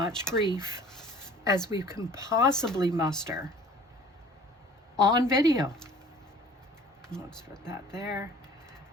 grief as we can possibly muster on video. Let's put that there.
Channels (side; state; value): both; normal; correlation 0.49